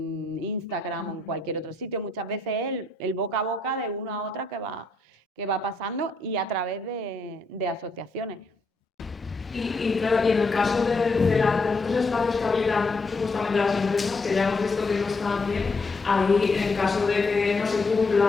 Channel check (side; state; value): right; quieter; 3.1 dB